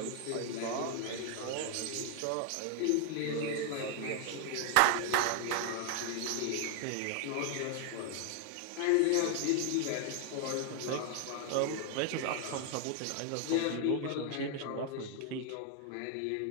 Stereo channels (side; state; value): both; different; correlation 0.00